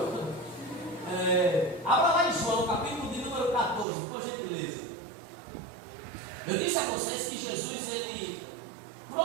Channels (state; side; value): drops out; left; at 3.9 s